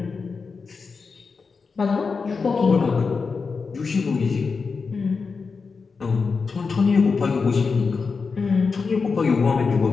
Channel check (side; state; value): right; quieter; 4.9 dB